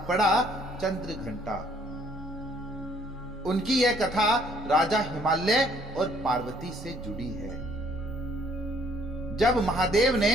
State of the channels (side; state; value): both; normal; correlation 0.63